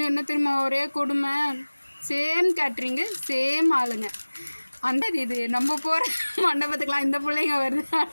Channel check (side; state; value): both; inverted; correlation -1.00